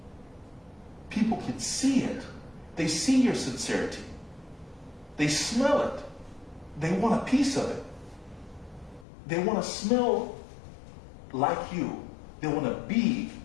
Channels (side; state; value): right; drops out; at 9.1 s